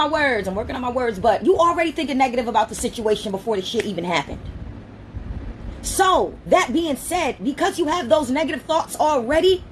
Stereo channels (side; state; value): both; identical; correlation 1.00